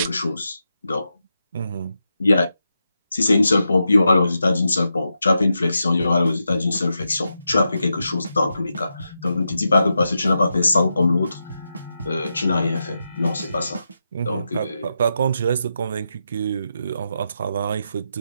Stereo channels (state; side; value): inverted; both; correlation -0.87